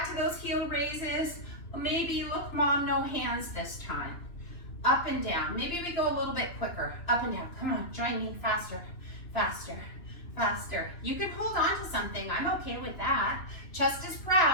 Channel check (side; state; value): right; late; 2.9 ms